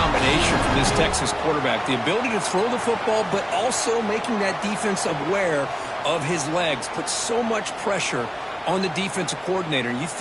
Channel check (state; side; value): identical; both; correlation 1.00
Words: from this Texas quarterback. The ability to throw the football, but also making that defense aware of his legs. Puts so much pressure on the defensive coordinator. You